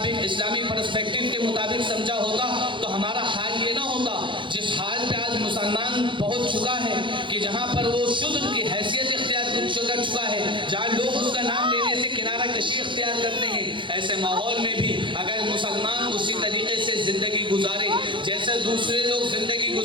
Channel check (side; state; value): left; late; 0.24 ms